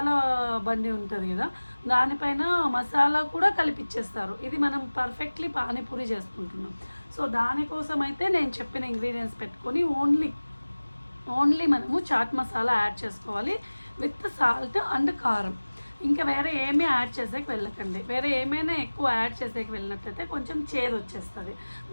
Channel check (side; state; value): both; inverted; correlation -1.00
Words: బండి ఉంటుంది కదా, దానిపైన మసాలా కూడా కలిపిచ్చేస్తారు. ఇది మనం పర్ఫెక్ట్లీ పానీపూరి చేసుకుంటున్నాం. సో దానికోసం అయితే నేను చెప్పిన ఇంగ్రీడియంట్స్ పెట్టుకొని ఓన్లీ మనము చాట్ మసాలా యాడ్ చేసుకోవాలి విత్ సాల్ట్ అండ్ కారం. ఇంకా వేరే ఏమీ యాడ్ చేసేకి వెళ్ళకండి. వేరే ఏమైనా ఎక్కువ యాడ్ చేసేకి వెళ్ళినట్టయితే కొంచెం చేదు వచ్చేస్తుంది.